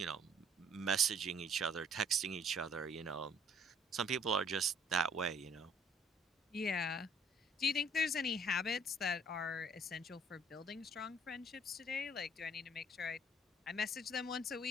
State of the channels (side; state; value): both; normal; correlation 0.59